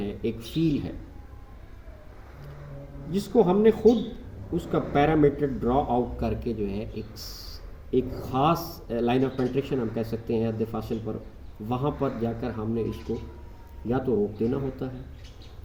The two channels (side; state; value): both; identical; correlation 1.00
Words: ایک فیل ہے، جس کو ہم نے خود اس کا پیرامیٹر ڈرا آؤٹ کر کے جو ہے ایک خاص لائن آف پینٹریشن ہم کہہ سکتے ہیں، حد فاصل پر، وہاں پر جا کر ہم نے اس کو یا تو روک دینا ہوتا ہے،